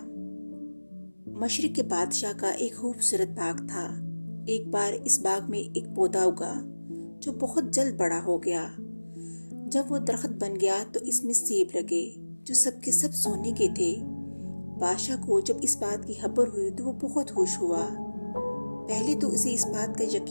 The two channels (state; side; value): inverted; both; correlation -1.00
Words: مشرق کے بادشاہ کا ایک خوبصورت باغ تھا۔ ایک بار اس باغ میں ایک پودا اگا جو بہت جلد بڑا ہو گیا۔ جب وہ درخت بن گیا تو اس میں سیب لگے جو سب کے سب سونے کے تھے۔ بادشاہ کو جب اس بات کی خبر ہوئی تو وہ بہت خوش ہوا۔ پہلے تو اسے اس بات کا